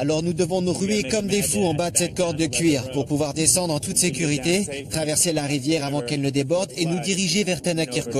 nous devons nous ruer comme des fous en bas de cette corde de cuir pour pouvoir descendre en toute sécurité, traverser la rivière avant qu'elle ne déborde et nous diriger vers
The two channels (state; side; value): identical; both; correlation 1.00